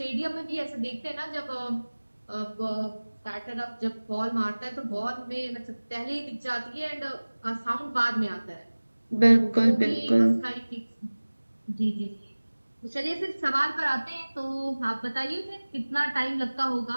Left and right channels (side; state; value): both; inverted; correlation -1.00